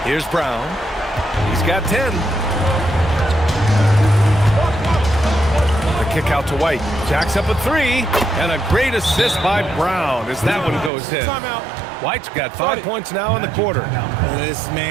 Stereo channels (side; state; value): left; drops out; at 10.9 s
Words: Here's Brown. He's got 10. The kick out to White. Jacks up a 3. And a great assist by Brown as that one goes in. Timeout. White's got 5 points now in the quarter. This